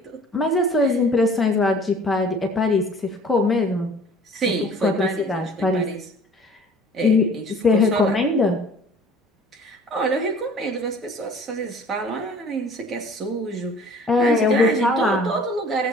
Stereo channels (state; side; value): normal; both; correlation 0.50